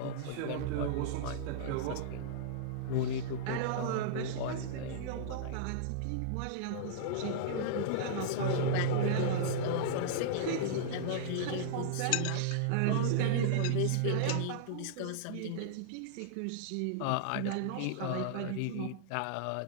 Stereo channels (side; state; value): both; different; correlation -0.02